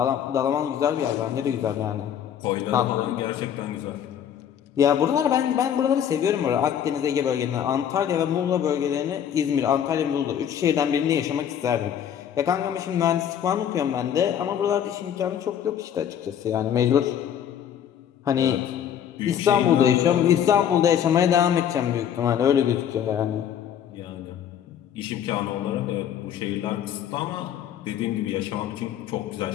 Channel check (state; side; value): quieter; right; 9.3 dB